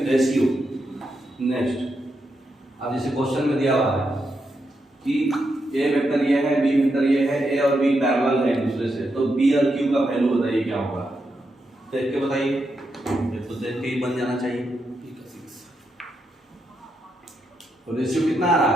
रेशियो। नेक्स्ट, अब जैसे क्वेश्चन में दिया हुआ है कि ए वेक्टर ये है, बी वेक्टर ये है, ए और बी पैरेलल है एक दूसरे से, तो बी और क्यू का वैल्यू बताइए क्या होगा। देख के बताइए, ये तो देख के ही बन जाना चाहिए। तो रेशियो कितना आ रहा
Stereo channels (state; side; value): normal; both; correlation 0.83